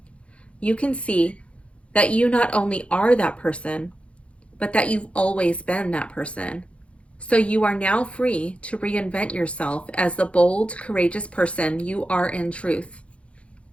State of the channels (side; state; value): right; late; 0.061 ms